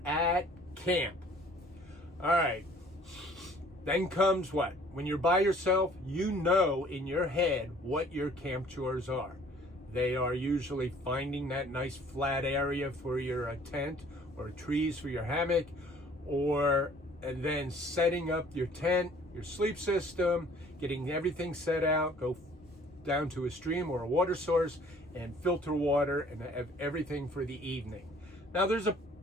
at camp. All right. Then comes what? When you're by yourself, you know in your head what your camp chores are. They are usually finding that nice flat area for your tent, or trees for your hammock, and then setting up your tent, your sleep system, getting everything set out, go down to a stream or a water source and filter water and have everything for the evening. Now there's a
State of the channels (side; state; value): both; normal; correlation 0.55